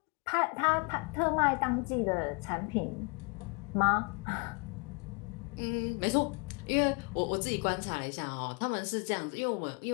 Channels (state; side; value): quieter; right; 31.5 dB